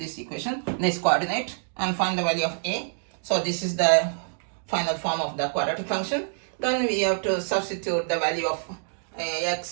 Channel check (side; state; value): left; silent; digital silence